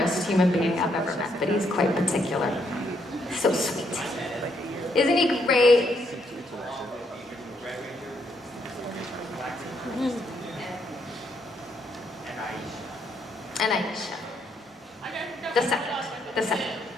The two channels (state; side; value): normal; both; correlation 0.74